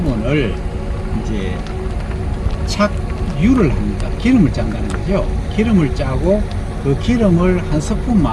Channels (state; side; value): identical; both; correlation 1.00